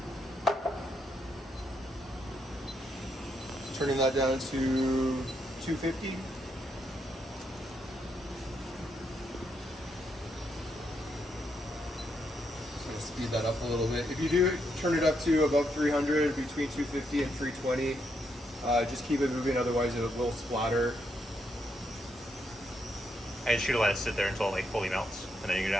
Turning that down to 250. Speed that up a little bit. If you do turn it up to above 300, between 250 and 320, just keep it moving, otherwise it will splatter. And just let it sit there until it like fully melts, and then you can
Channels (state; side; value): normal; both; correlation 0.79